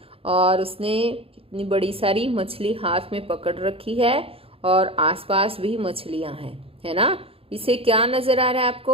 और उसने कितनी बड़ी सारी मछली हाथ में पकड़ रखी है और आसपास भी मछलियां हैं, है ना। इसे क्या नजर आ रहा है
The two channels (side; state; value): left; late; 0.27 ms